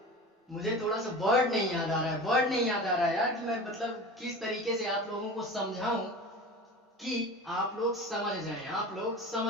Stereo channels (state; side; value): normal; both; correlation 0.34